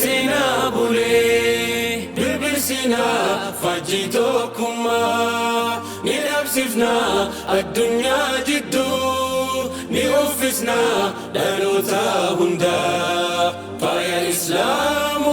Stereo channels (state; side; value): identical; both; correlation 1.00